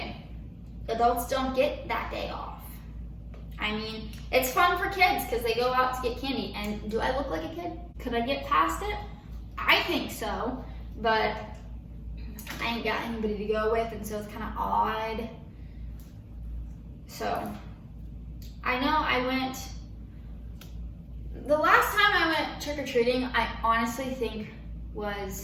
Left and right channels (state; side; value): identical; both; correlation 1.00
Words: Adults don't get that day off. I mean, it's fun for kids because they go out to get candy. And do I look like a kid? Could I get past it? I think so, but I ain't got anybody to go with, and so it's kind of odd. So I know the last time I went trick-or-treating, I honestly think